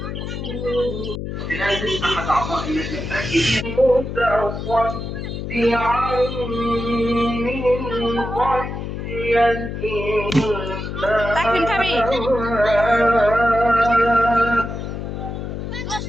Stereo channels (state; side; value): noise; left; hum, 6 dB below the sound